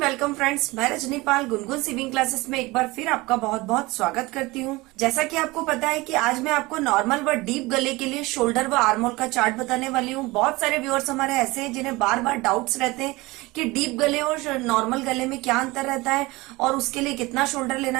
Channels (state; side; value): quieter; left; 21.9 dB